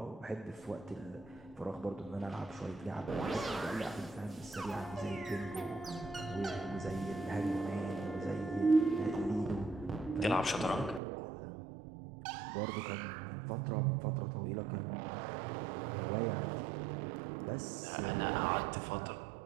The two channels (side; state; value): left; drops out; at 11.0 s